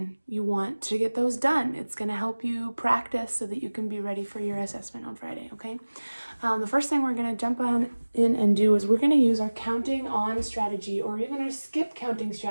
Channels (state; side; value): inverted; both; correlation -1.00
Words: you want to get those done. It's going to help you practice so that you can be ready for your assessment on Friday, okay? The first thing we're going to jump in and do is we're going to use our counting on strategy, or even our skip counting